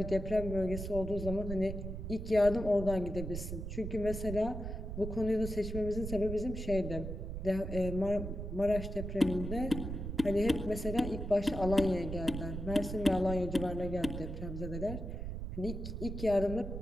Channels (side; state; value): right; noise; rumble, 6 dB below the sound